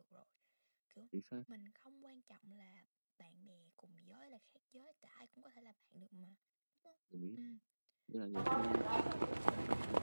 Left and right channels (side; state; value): both; inverted; correlation -1.00